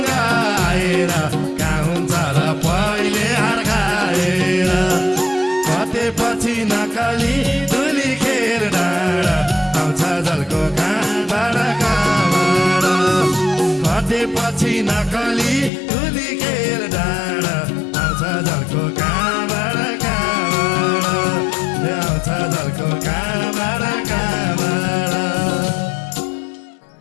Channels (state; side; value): drops out; right; at 15.7 s